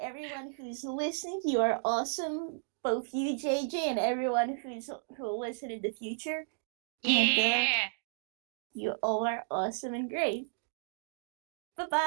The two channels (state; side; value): silent; left; digital silence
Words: everyone who's listening, you are awesome. Both you, JJ, and everyone who'll listen in the future, and Yeah. you all are awesome and great. Bye